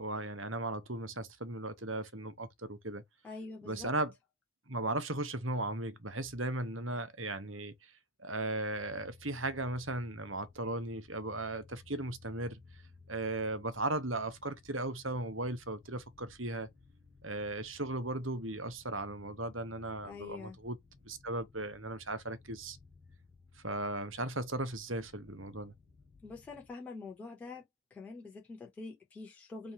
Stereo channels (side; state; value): both; normal; correlation 0.01